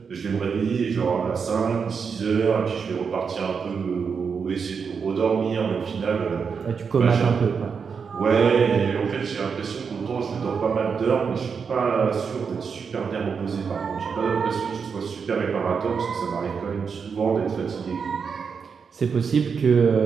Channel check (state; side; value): quieter; left; 6.0 dB